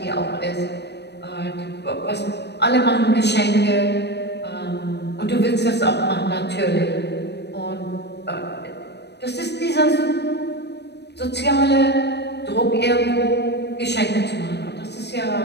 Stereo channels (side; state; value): right; late; 0.49 ms